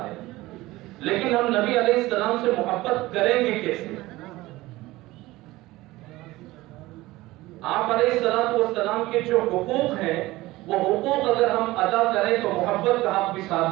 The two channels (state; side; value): quieter; left; 18.7 dB